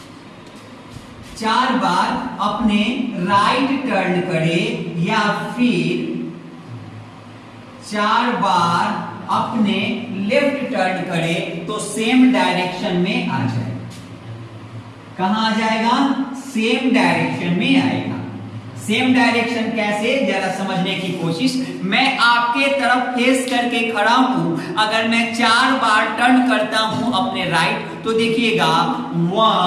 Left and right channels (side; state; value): both; identical; correlation 1.00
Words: 4 बार अपने राइट टर्न करे या फिर 4 बार अपने लेफ्ट टर्न करे तो सेम डायरेक्शन में आ जाएगा। कहां आ जाएगा? सेम डायरेक्शन में आएगा। सेम डायरेक्शन कैसे, जरा समझने की कोशिश। मैं आपके तरफ फेस करके खड़ा हूं, अगर मैं 4 बार टर्न करता हूं अपने राइट तो देखिएगा